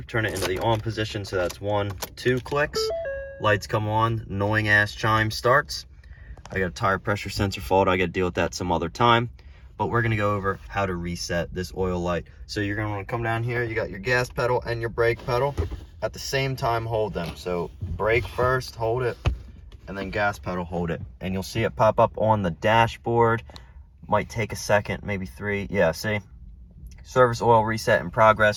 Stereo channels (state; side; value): identical; both; correlation 1.00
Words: turn it into the on position. So that's 1, 2 clicks. Lights come on, annoying ass chime starts. I got a tire pressure sensor fault. I got to deal with that some other time. But we're going to go over how to reset this oil light. So you're going to want to come down here. You got your gas pedal and your brake pedal. At the same time, hold them. So brake first, hold it, and then gas pedal, hold it. And you'll see it pop up on the dashboard. Might take a second, maybe 3. Yeah, see? Service oil reset in